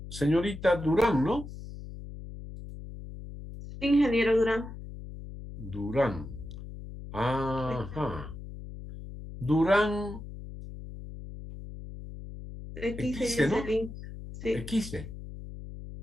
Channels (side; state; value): left; noise; hum, 12 dB below the sound